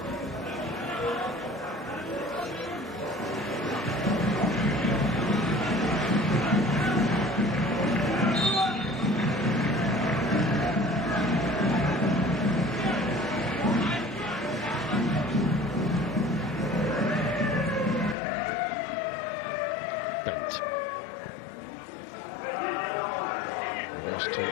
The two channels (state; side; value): drops out; right; at 18.2 s